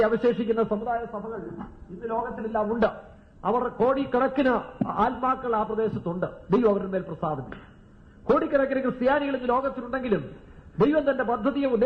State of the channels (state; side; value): identical; both; correlation 1.00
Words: അവശേഷിക്കുന്ന സമുദായ സഭകൾ ഇന്ന് ലോകത്തിലെല്ലാം ഉണ്ട്. അവർ കോടിക്കണക്കിന് ആത്മാക്കൾ ആ പ്രദേശത്തുണ്ട്. ദൈവം അവരുടെ മേൽ പ്രസാദിക്കും. കോടിക്കണക്കിന് ക്രിസ്ത്യാനികൾ ഇന്ന് ലോകത്തിലുണ്ടെങ്കിലും ദൈവം തന്റെ പദ്ധതിയെ